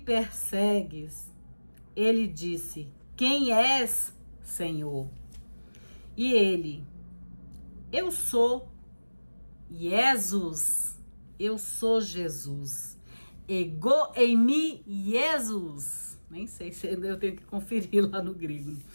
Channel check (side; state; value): both; inverted; correlation -1.00